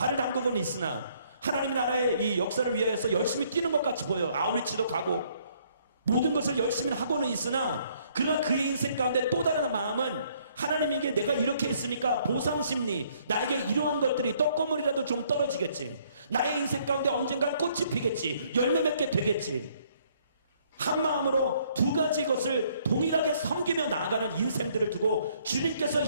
담그고는 있으나, 하나님의 나라의 이 역사를 위하여서 열심히 뛰는 것 같이 보여요. 아우리치도 가고 모든 것을 열심히 하고는 있으나, 그러나 그의 인생 가운데 또 다른 마음은 하나님에게 내가 이렇게 했으니까 보상심리, 나에게 이러한 것들이 떡고물이라도 좀 떨어지겠지, 나의 인생 가운데 언젠간 꽃이 피겠지, 열매 맺게 되겠지, 한 마음으로 두 가지 것을 동일하게 섬기며 나아가는 인생들을 두고 주님께서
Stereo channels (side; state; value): both; inverted; correlation -0.65